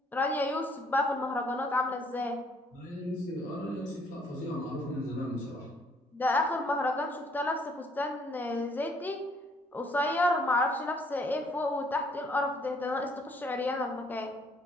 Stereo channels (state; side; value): normal; both; correlation 0.64